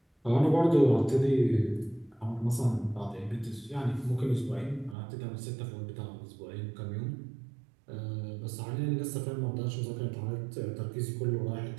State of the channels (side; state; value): left; drops out; at 5.0 s